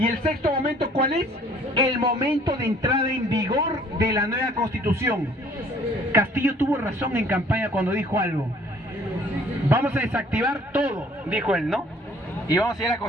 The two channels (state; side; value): normal; both; correlation 0.56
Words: el sexto momento, ¿cuál es? El momento de entrada en vigor de la nueva constitución. Castillo tuvo razón en campaña cuando dijo algo. Vamos a desactivar todo, dijo él, ¿no? Y vamos a ir a la